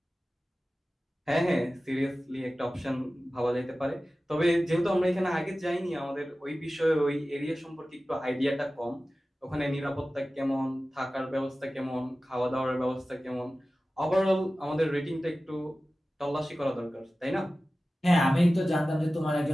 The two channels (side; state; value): both; normal; correlation 0.96